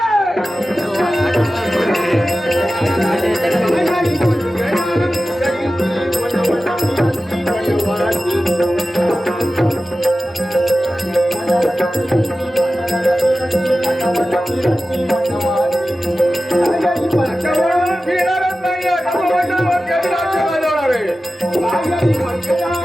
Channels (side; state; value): both; normal; correlation 0.95